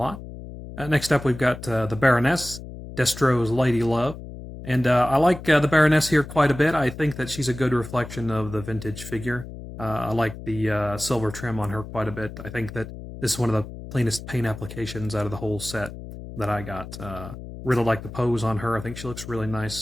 Next up, we've got the Baroness, Destro's Lady Love. And I like the Baroness here quite a bit. I think that she's a good reflection of the vintage figure. I like the silver trim on her quite a bit. I think that this is one of the cleanest paint applications out of the whole set that I got. Really like the pose on her. I think she looks really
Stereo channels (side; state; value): left; noise; hum, 12 dB below the sound